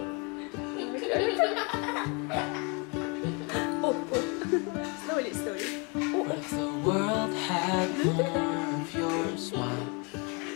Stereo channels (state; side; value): quieter; right; 32.3 dB